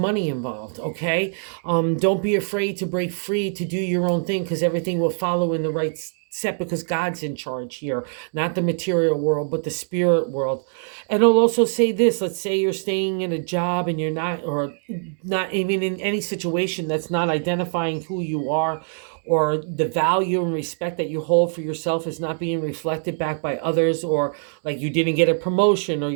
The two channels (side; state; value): left; silent; 63 dB below the other